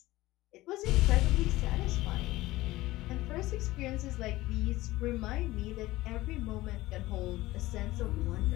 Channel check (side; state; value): right; quieter; 18.0 dB